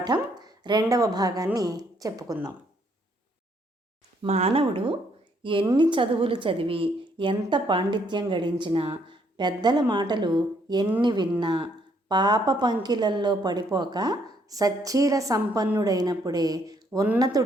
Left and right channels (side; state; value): both; normal; correlation 0.69